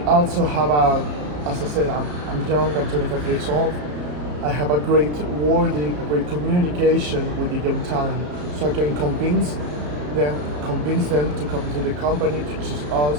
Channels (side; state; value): left; late; 34 ms